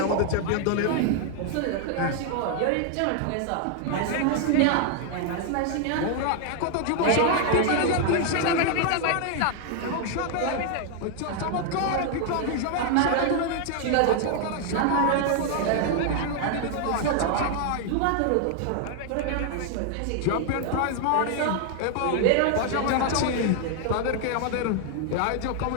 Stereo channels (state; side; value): different; both; correlation 0.00